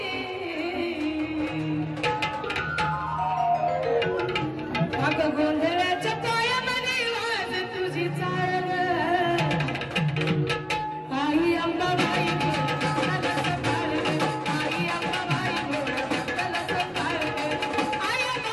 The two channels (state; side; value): identical; both; correlation 1.00